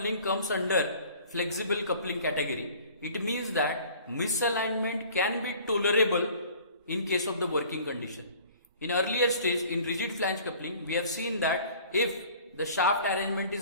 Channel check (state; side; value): inverted; both; correlation -0.49